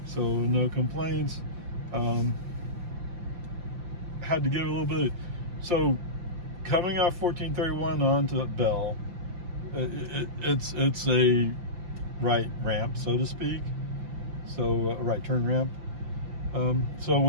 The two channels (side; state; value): left; late; 5.8 ms